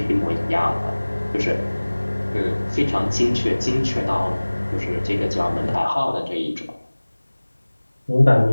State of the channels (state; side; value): inverted; both; correlation -1.00